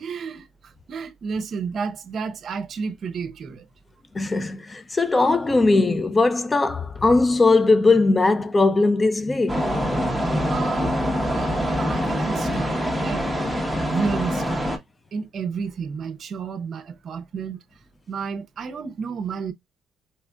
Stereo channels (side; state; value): both; normal; correlation 0.90